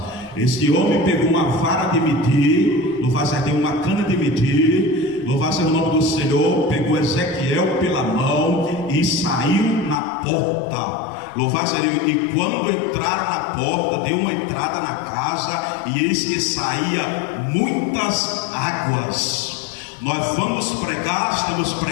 Este homem pegou uma vara de medir, louvado seja Deus, uma cana de medir, louvado seja o nome do Senhor, pegou Ezequiel pela mão e saiu na porta. Louvado seja Deus. E quando entraram na porta, deu uma entrada na casa, e eis que saía muitas águas. Nós vamos pregar, estamos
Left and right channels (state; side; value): drops out; right; at 10.0 s